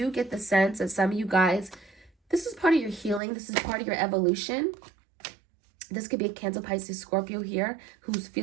get the sense that some of you guys, this is part of your healing. This is part of your evolution. This could be a Cancer, Pisces, Scorpio here who's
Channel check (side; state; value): left; drops out; at 3.2 s